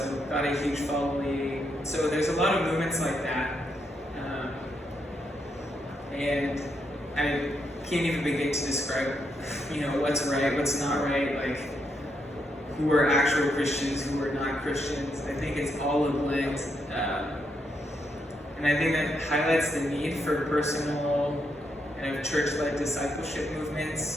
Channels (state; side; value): normal; both; correlation 0.79